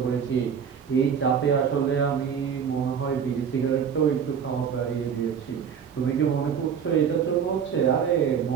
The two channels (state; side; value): quieter; left; 7.4 dB